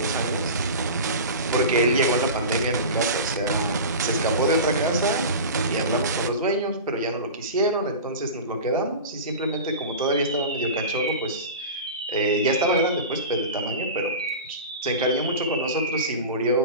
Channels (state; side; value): inverted; both; correlation -0.30